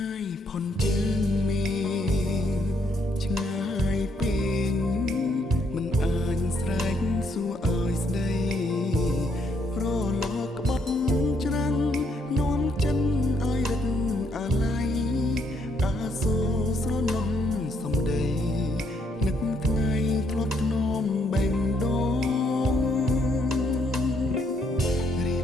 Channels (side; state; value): both; normal; correlation 0.72